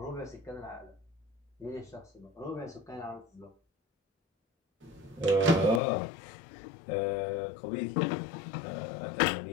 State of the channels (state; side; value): drops out; right; at 5.8 s